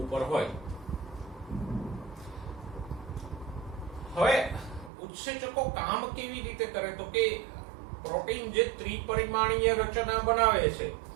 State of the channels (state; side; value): drops out; left; at 4.9 s